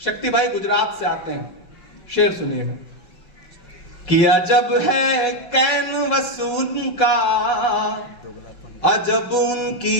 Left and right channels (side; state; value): right; late; 5.4 ms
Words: भाई गुजरात से आते हैं, शेर सुनिएगा कि अजब है कैनवस उनका, अजब